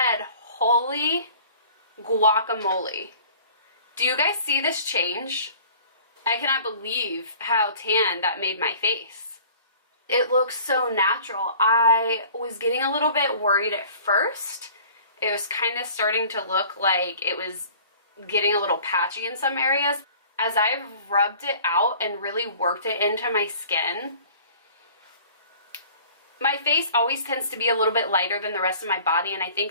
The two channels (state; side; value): inverted; both; correlation -0.48